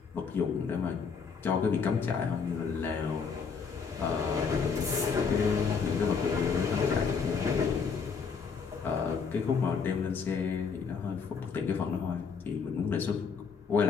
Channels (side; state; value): right; quieter; 5.7 dB